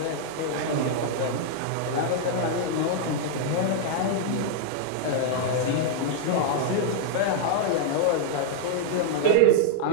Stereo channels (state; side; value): different; both; correlation -0.01